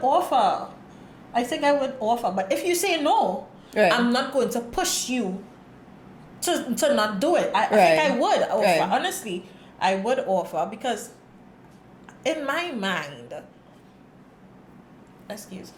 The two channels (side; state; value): both; identical; correlation 1.00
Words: offer. But if you say no, I'm not going to push you to not do it. I think I would offer. Honestly, I would offer because in my mind, I